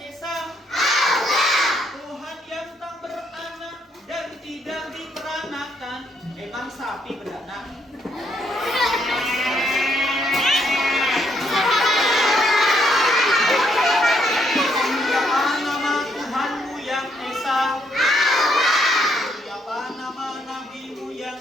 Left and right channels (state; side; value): normal; both; correlation 0.72